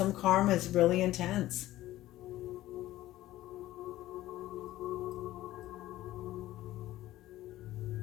karma is really intense.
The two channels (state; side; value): quieter; right; 15.3 dB